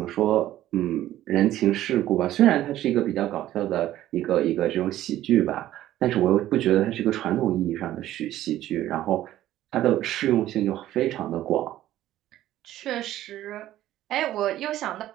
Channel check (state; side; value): quieter; left; 13.7 dB